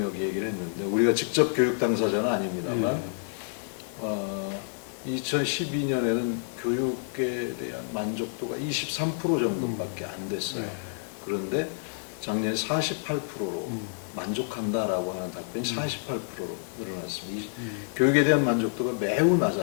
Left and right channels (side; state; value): right; silent; digital silence